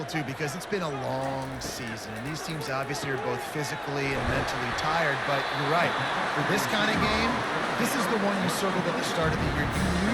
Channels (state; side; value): identical; both; correlation 1.00